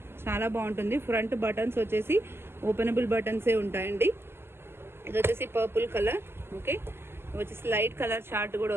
చాలా బాగుంటుంది. ఫ్రంట్ బటన్స్ వచ్చేసి ఓపెనబుల్ బటన్సే ఉంటాయండి. ఇది వచ్చేసి పర్పుల్ కలర్. ఓకే, ఇది వచ్చేసి లైట్ కలర్ చార్ట్ కూడా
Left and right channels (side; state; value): left; late; 0.12 ms